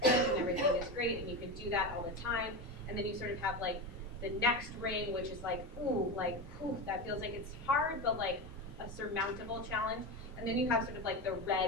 good and everything is great and you can do that all the time. And then you sort of have like the next ring, which is like, that feels like it's hard, but like a surmountable challenge. And then you have sort of like the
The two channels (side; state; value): both; normal; correlation 0.20